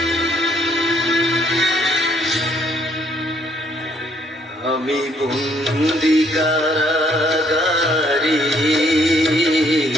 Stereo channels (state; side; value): normal; both; correlation 0.67